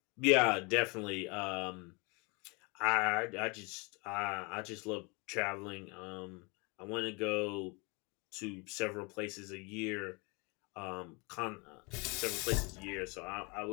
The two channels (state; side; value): quieter; right; 29.9 dB